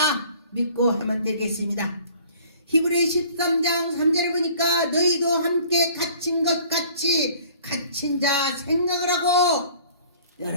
믿고 하면 되겠습니다. 히브리 13장 3절에 보니까 너희도 함께 갇힌 것 같이 갇힌 자 생각을 하고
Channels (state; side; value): inverted; both; correlation -0.52